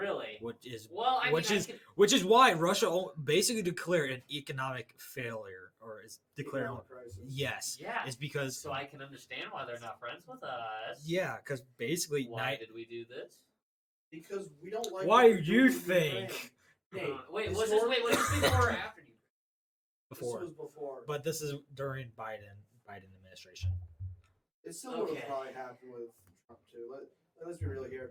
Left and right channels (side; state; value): both; identical; correlation 1.00